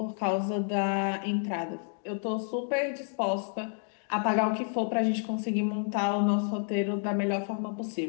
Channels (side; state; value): right; silent; 55 dB below the other